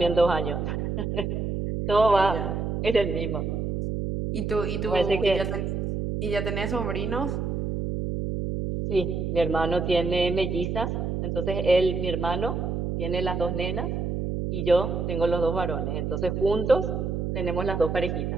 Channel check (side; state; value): right; noise; hum, 2 dB below the sound